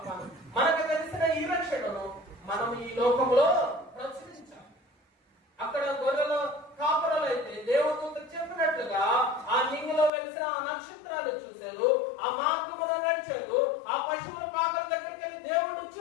మనకు తెలిసిన ఈ రక్షణను మనం ఈ లోకంలో ప్రచురించాలి. అక్కడ గొర్రెలు కాపురలు అయితే దేవదూత చెప్పినట్లుగా ఆ నింగిలో వెలిసిన ఆ నక్షత్రాలు చూశారు, ఆ మార్గమున నడిచారు, ఆ పశువుల పాకల దగ్గరికి వెళ్ళి దేవుడు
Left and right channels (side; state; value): right; drops out; at 10.1 s